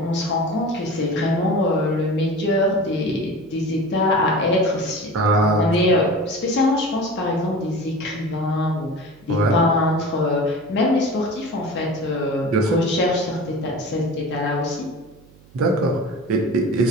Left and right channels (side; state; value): right; noise; hum, 26 dB below the sound